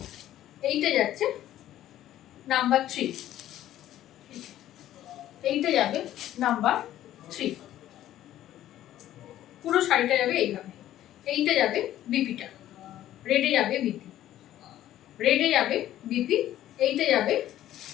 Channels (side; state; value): right; quieter; 12.9 dB